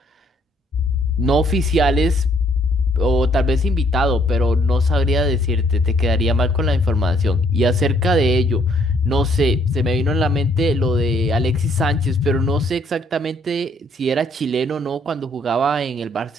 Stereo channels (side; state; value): both; normal; correlation 0.66